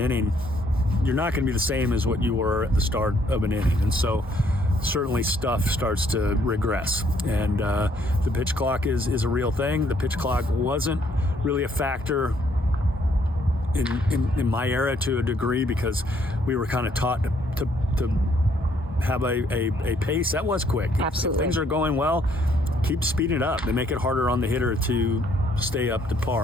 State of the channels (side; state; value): both; normal; correlation 0.67